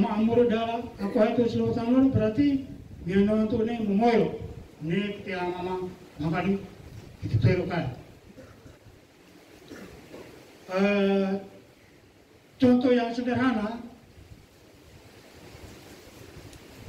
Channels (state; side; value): identical; both; correlation 1.00